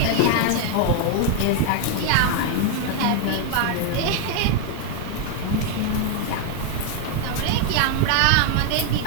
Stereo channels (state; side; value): different; both; correlation 0.00